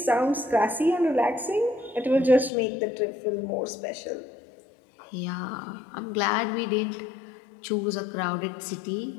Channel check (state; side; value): drops out; right; at 2.5 s